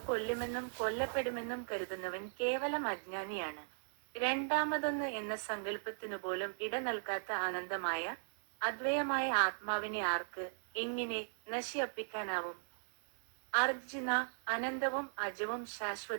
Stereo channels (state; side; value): silent; left; digital silence